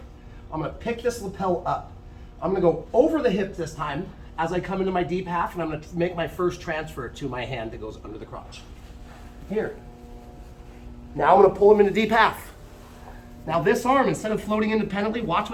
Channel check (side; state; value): both; identical; correlation 1.00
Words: I'm going to pick this lapel up. I'm going to go over the hip this time as I come into my deep half, and I'm going to make my first transfer to my hand that goes under the crotch. Here. Now I'm going to pull him into deep half. Now this arm, instead of floating independently, watch